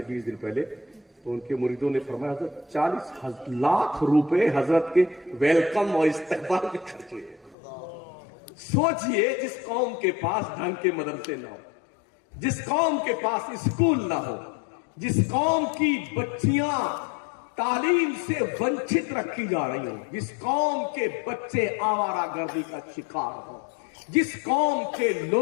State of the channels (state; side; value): drops out; right; at 7.6 s